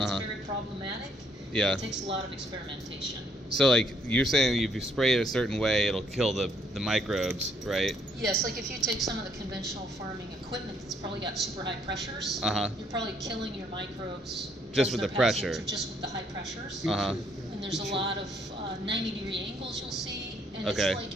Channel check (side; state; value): both; normal; correlation 0.68